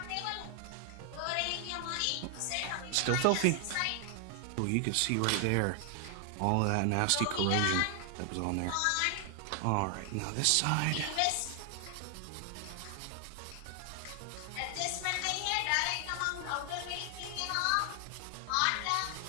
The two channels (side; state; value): both; different; correlation 0.00